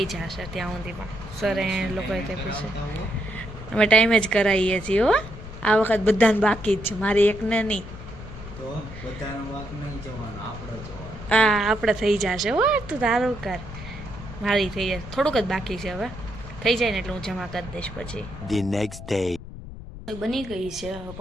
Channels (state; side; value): noise; left; rumble, 13 dB below the sound